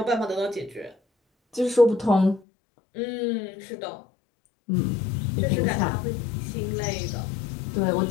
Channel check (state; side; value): drops out; right; at 2.4 s